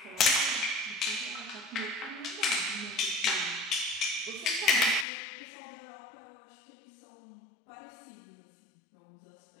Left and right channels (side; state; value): right; drops out; at 5.1 s